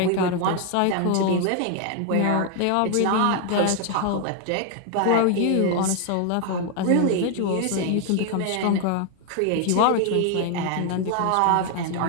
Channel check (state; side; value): different; both; correlation 0.00